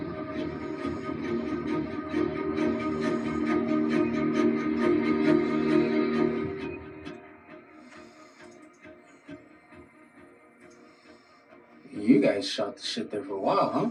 You guys shot the shit there for a while, huh?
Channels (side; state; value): both; identical; correlation 1.00